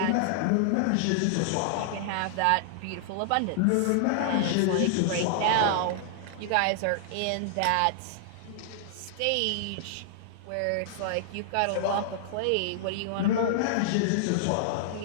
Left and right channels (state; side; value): different; both; correlation -0.01